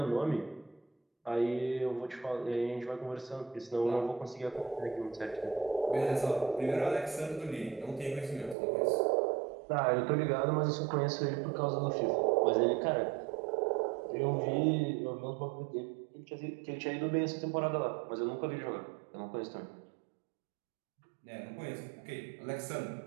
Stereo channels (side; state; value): left; drops out; at 8.6 s